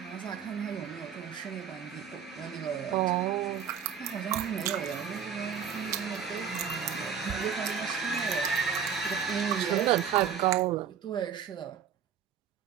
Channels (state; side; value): quieter; left; 7.7 dB